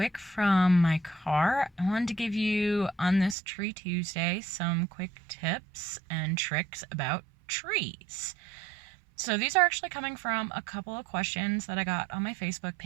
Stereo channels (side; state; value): left; drops out; at 3.4 s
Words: from my car. I wanted to give you on this Tree Tuesday some quick tips and tricks about trees. So these are actually coming from a couple of questions that I got on my Facebook